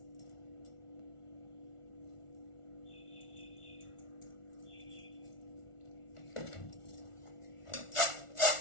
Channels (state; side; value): late; right; 1.4 ms